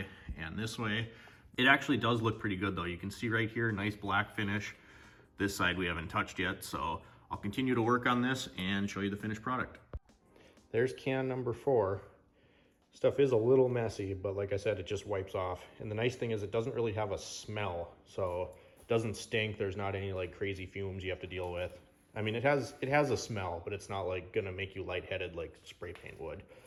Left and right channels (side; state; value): both; identical; correlation 1.00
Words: and this way. It actually does look pretty good though. You can see right here, nice black finish. This side we haven't touched yet, so I'll continue to work on this and show you the finished product. There's can number 4. Stuff is a little messy, but like I said, it just wipes off. And the nice thing is it doesn't really have a smell, so it doesn't stink. There's not any like crazy fumes you have to deal with. I mean, it has a smell, but it's not like gonna make you lightheaded like spray paint would.